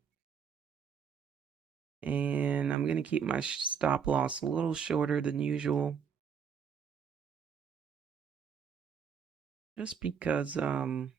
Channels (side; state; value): left; quieter; 7.0 dB